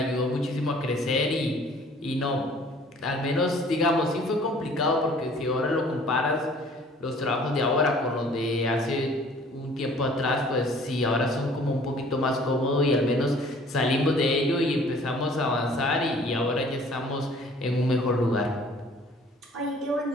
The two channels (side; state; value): both; normal; correlation 0.53